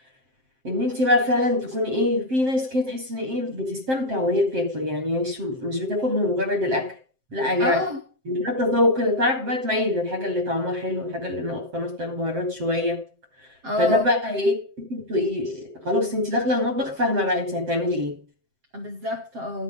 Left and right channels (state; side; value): late; left; 7.7 ms